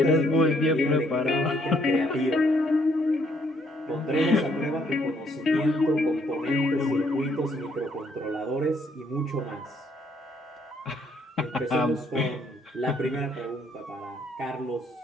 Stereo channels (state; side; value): normal; both; correlation 0.68